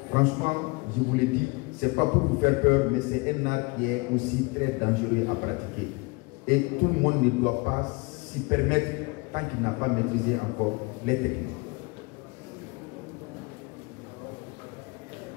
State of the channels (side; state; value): right; quieter; 26.6 dB